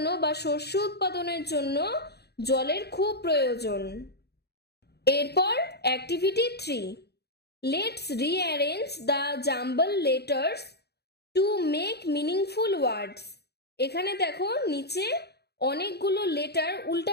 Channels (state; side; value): late; right; 0.48 ms